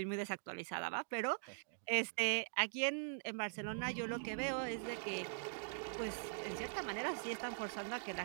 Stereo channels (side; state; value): left; silent; digital silence